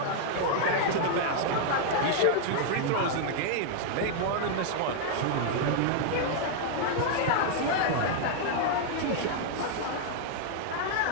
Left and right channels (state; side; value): different; both; correlation -0.01